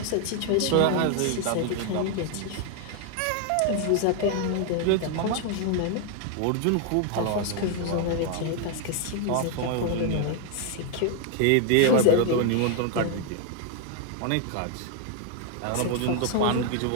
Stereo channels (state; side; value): different; both; correlation 0.00